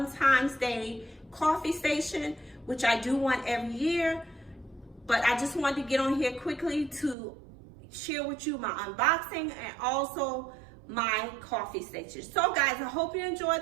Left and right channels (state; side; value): drops out; left; at 7.2 s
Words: Day coffee station, which I do one every year. But I just wanted to get on here quickly to share with you my unboxing and also my coffee station. So guys, I hope you